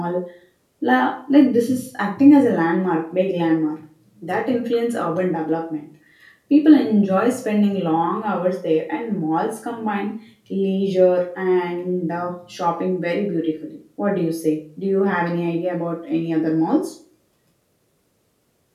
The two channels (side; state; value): both; identical; correlation 1.00